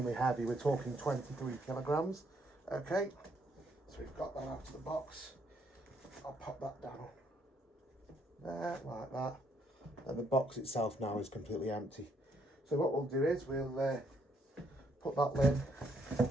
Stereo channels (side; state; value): both; normal; correlation 0.71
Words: heavy, we're talking 23 kilograms. Okay, so we've got that out of the box. I'll pop that down there like that, and the box itself now is completely empty. So what we'll do is we'll put that lid